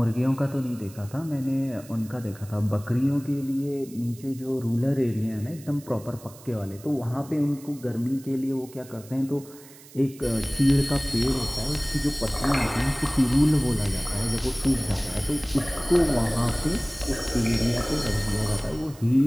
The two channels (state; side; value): noise; right; hiss, 21 dB below the sound